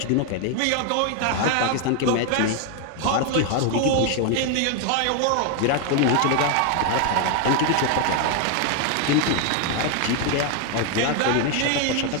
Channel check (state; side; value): different; both; correlation 0.01